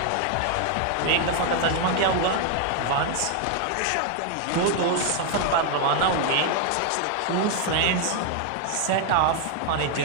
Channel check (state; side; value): different; both; correlation 0.00